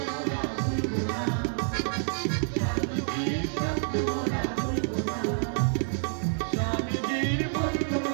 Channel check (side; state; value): left; silent; digital silence